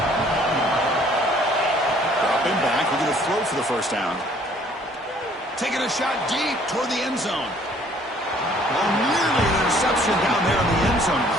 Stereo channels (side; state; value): both; normal; correlation 0.59